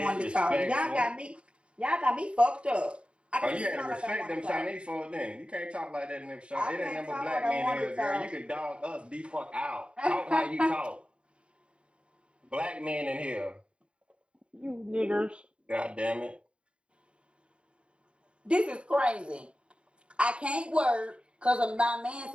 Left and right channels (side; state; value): left; late; 0.057 ms